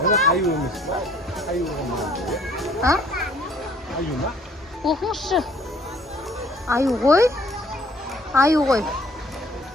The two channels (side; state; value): both; normal; correlation 0.58